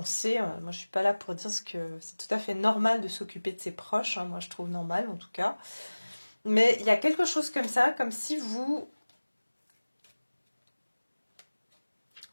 Moi, je suis pas là pour dire que c'est tout à fait normal de s'occuper de ses proches. Hein, moi, je trouve normal en tout cas. Mais il y a quelque chose comme ça, comme si vous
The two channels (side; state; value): both; inverted; correlation -1.00